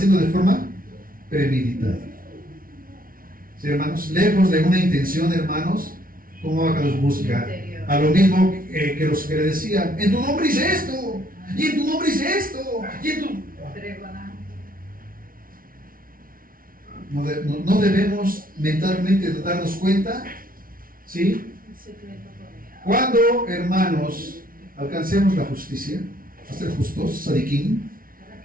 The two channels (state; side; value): late; left; 0.42 ms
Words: de forma premeditada. ¿Sí, hermanos? Lejos de una intención, hermanos, ¿cómo Abacados busca? a lo mismo que los que le decían, en tu nombre hice esto, y en tu nombre hice esto, y en tu... No debemos mentalmente darnos cuenta, ¿sí? Cuando, hermanos, alcancemos la justicia, a ser justos, sadiquín,